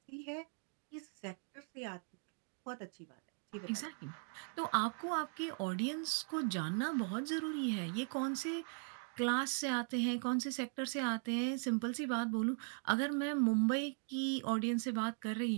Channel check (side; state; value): left; silent; 52 dB below the other